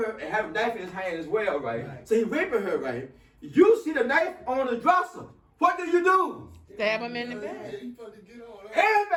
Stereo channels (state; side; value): identical; both; correlation 1.00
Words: and have a knife in his hand as well, right? So he raping her, right? You see the knife on the dresser. What do? Stab him in the back.